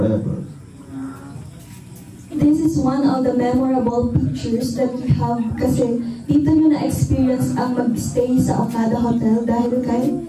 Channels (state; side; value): identical; both; correlation 1.00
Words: This this is one of the memorable pictures that we have kasi dito nyo na-experience ang mag-stay sa Okada Hotel dahil kay